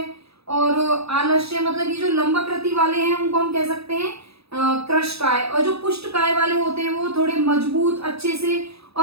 और आलस्य, मतलब ये जो लंबाकृति वाले हैं उनको हम कह सकते हैं क्रश काय, और जो पुष्ट काय वाले होते हैं वो थोड़े मजबूत अच्छे से,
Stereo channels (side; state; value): left; late; 0.78 ms